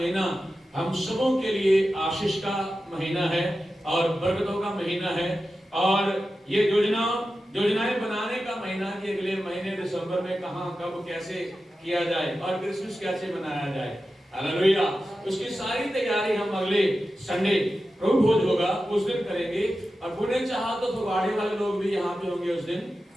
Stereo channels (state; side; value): normal; both; correlation 0.92